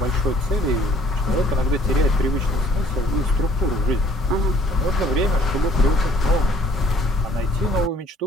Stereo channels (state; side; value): normal; both; correlation 0.58